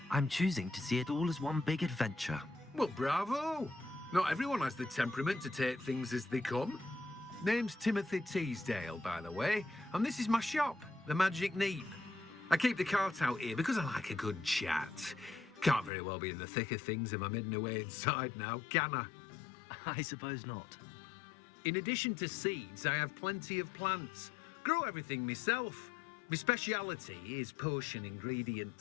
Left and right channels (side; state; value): right; drops out; at 15.9 s